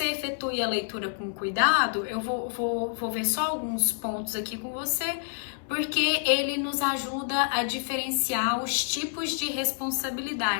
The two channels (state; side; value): silent; right; 59 dB below the other